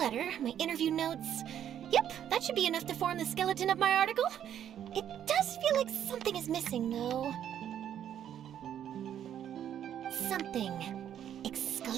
my interview notes. Yep, that should be enough to form the skeleton of my article. It does feel like something is missing, though. Something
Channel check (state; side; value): quieter; left; 10.0 dB